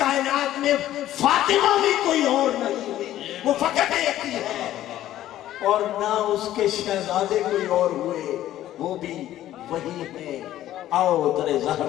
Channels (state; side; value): quieter; right; 13.2 dB